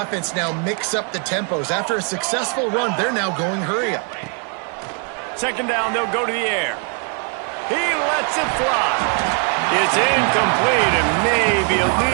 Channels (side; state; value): left; quieter; 38.4 dB